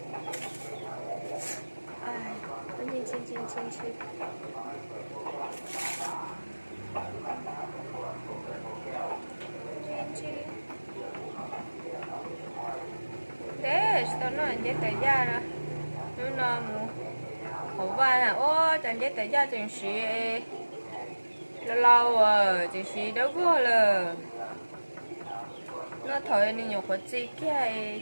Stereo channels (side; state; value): both; inverted; correlation -1.00